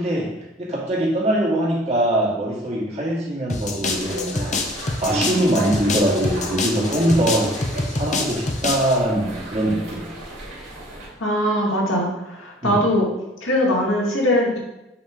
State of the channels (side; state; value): both; normal; correlation 0.50